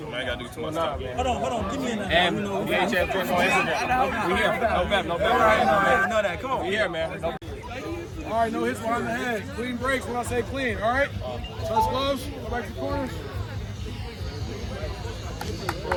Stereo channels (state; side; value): identical; both; correlation 1.00